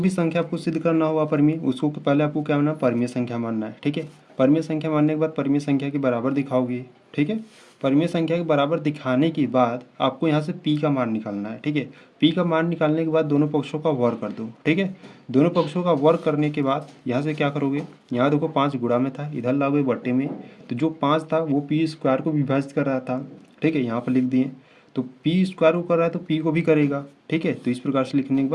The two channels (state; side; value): identical; both; correlation 1.00